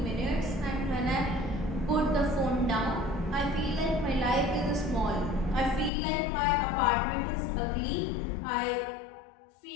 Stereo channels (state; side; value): drops out; right; at 5.9 s